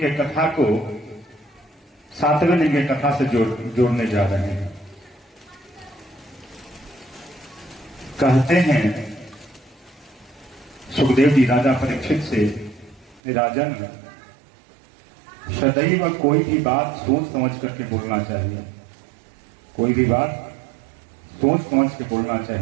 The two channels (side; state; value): left; drops out; at 13.2 s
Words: कथा को 7वें दिन के कथा से जोड़ने जा रहे हैं। कहते हैं सुखदेव जी राजा परीक्षित से, राजन सदैव कोई भी बात सोच समझ करके बोलना चाहिए। कोई भी बात सोच समझ के बोलना